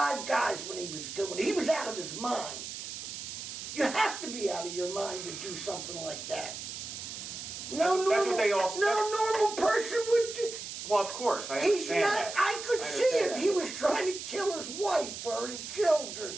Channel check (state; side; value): noise; right; hiss, 8 dB below the sound